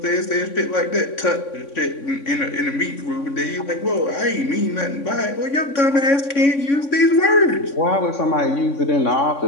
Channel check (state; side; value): late; right; 3.6 ms